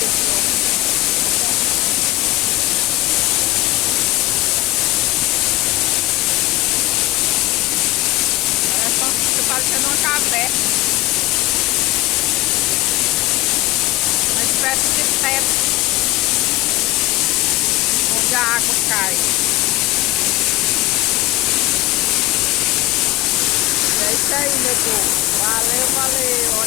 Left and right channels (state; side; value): quieter; right; 19.3 dB